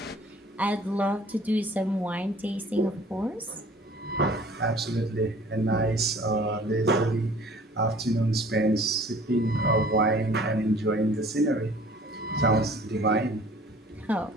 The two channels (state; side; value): normal; both; correlation 0.51